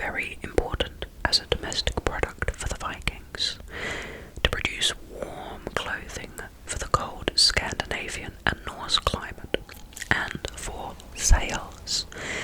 important as a domestic product for the Vikings, to produce warm clothing for the cold Scandinavian and Norse climate, and for sails.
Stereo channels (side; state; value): both; identical; correlation 1.00